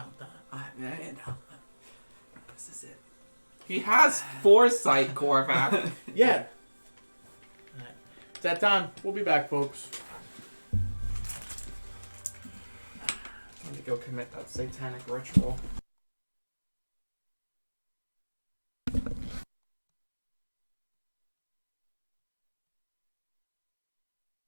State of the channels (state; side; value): inverted; both; correlation -1.00